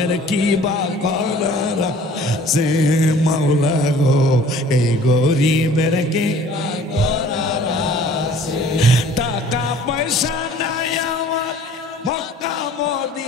কি বা করার সে মাওলা গো এই গরিবের কি বা করার আছে টাকা পয়সা নাই আমার মক্কা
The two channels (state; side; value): normal; both; correlation 0.51